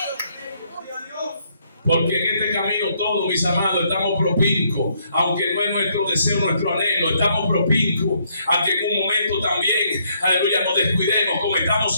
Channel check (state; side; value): inverted; both; correlation -0.71